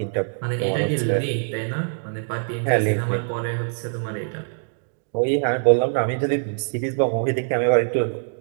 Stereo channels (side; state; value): left; silent; digital silence